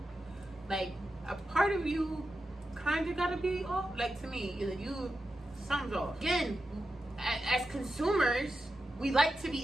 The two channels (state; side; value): normal; both; correlation 0.90